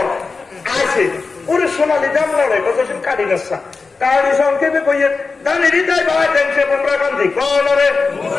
আছে পুরো সোনালি দাম লড়ে জসিম কাটি গাছা কারণ সংক্ষেপে কইয়ে দানি হৃদয় ভাই দেখছে বুমরা গান্ধী কোন রে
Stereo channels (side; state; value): right; quieter; 4.3 dB